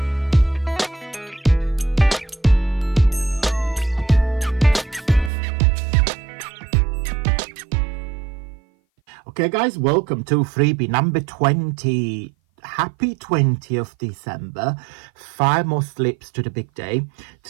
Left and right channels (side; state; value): left; drops out; at 5.3 s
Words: Okay guys, welcome to freebie number 20. Happy 20th December. 5 more slips to the big day.